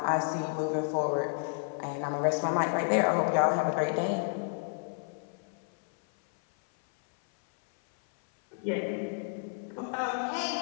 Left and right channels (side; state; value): right; silent; 57 dB below the other